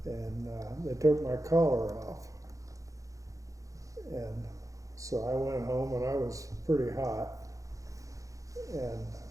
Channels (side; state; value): left; late; 0.16 ms